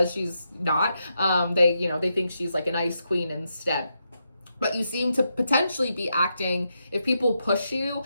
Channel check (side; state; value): both; inverted; correlation -0.83